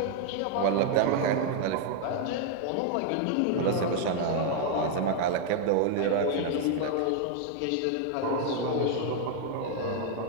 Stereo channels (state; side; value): different; both; correlation 0.00